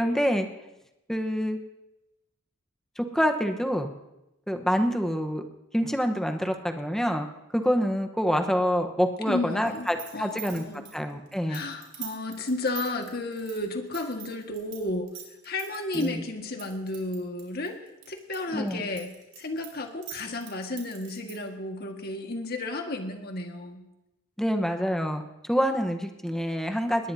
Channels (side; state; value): both; normal; correlation 0.79